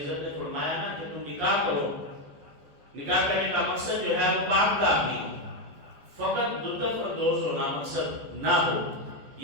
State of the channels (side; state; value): left; late; 14 ms